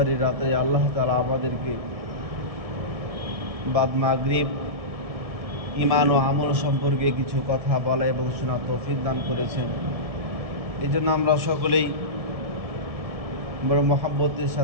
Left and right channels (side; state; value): left; late; 1.7 ms